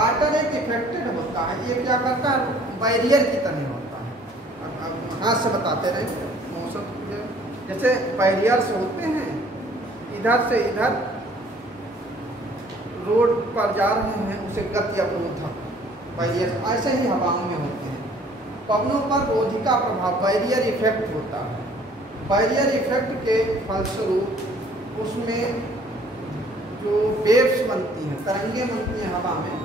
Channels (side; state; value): both; normal; correlation 0.56